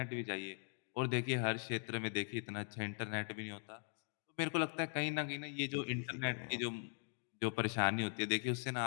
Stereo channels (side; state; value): right; silent; 51 dB below the other